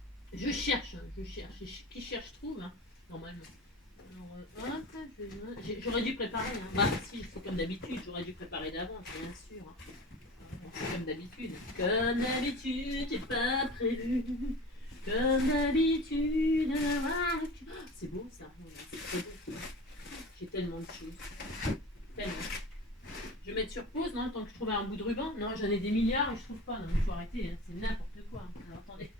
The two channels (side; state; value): both; normal; correlation 0.35